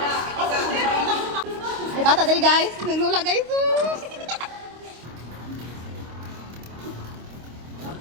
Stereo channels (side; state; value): left; late; 25 ms